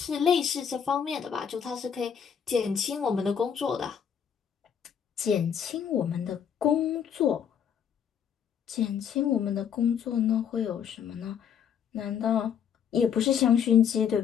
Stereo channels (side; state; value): right; quieter; 8.0 dB